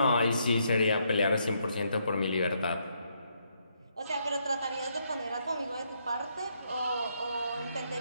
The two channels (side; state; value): both; inverted; correlation -0.75